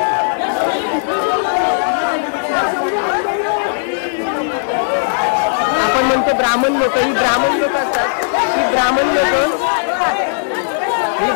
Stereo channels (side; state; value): right; silent; digital silence